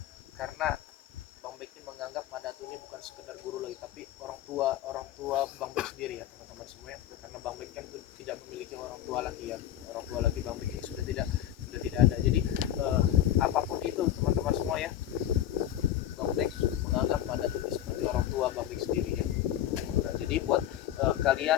karena Bang Bek ini menganggap Madatu ini bukan sekedar guru lagi, tapi orang tua Bang Bek sendiri ya teman-teman semua ya. Karena Bang Bek kan tidak memiliki orang tua lagi ya. Orang tua lagi Bang Bek ini sudah tidak ada. Jadi apapun itu teman-teman semua ya, Bang Bek menganggap Madatu ini seperti orang tua Bang Bek sendiri ya. Nah, jadi buat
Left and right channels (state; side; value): quieter; right; 11.7 dB